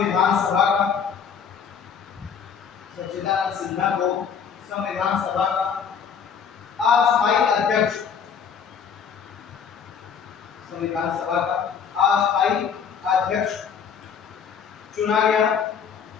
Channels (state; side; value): quieter; right; 7.0 dB